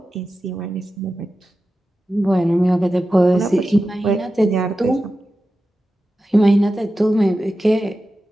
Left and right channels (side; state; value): both; normal; correlation 0.93